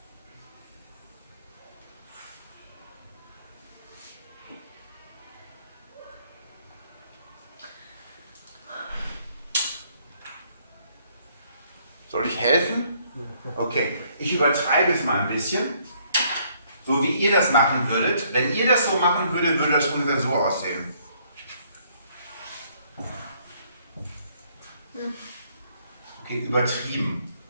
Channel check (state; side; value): inverted; both; correlation -0.66